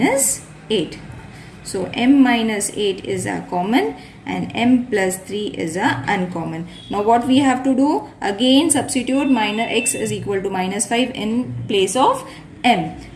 8. So m minus 8 is a common and m plus 3 is a uncommon. Now what we have to do, again substitute minus x is equal to minus 5 in place of m.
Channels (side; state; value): both; identical; correlation 1.00